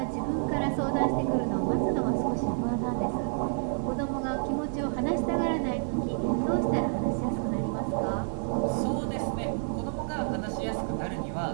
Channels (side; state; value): left; silent; 59 dB below the other